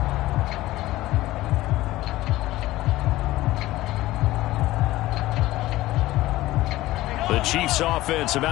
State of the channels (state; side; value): quieter; right; 16.9 dB